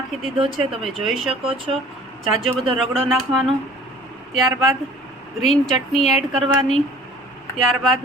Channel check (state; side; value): normal; both; correlation 0.50